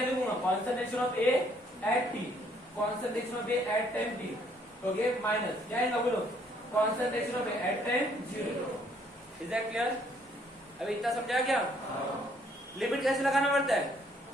लिखूंगा, concentration of A at T, concentration of A at time T, okay, minus क्या है बोलो, concentration of A at time 0, is that clear? अभी इतना समझा क्या? लिमिट कैसे लगाना पड़ता है,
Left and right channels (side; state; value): both; normal; correlation 0.66